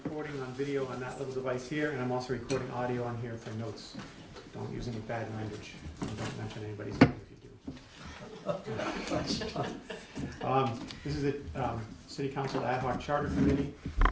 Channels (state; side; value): identical; both; correlation 1.00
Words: on video on that little device here, and I'm also recording audio on here for notes. Don't use any bad language, and don't mention anybody's name if you do. This is the City Council Ad Hoc Charter Committee.